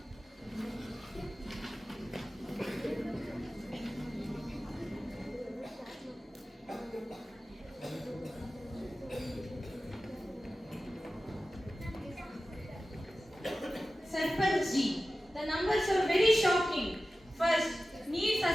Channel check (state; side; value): normal; both; correlation 0.95